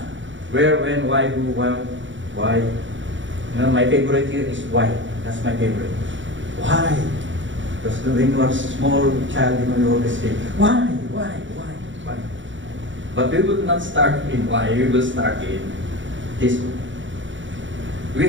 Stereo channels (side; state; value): left; late; 0.55 ms